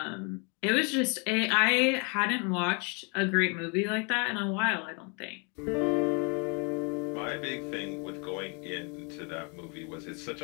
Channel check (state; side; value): quieter; right; 34.6 dB